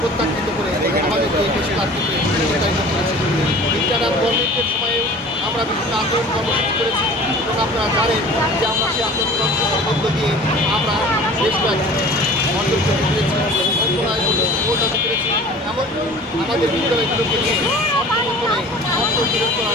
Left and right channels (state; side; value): normal; both; correlation 0.44